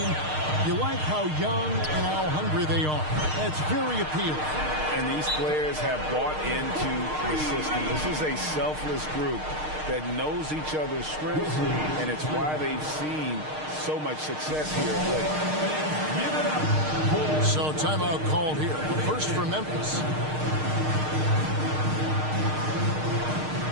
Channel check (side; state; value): left; late; 6.5 ms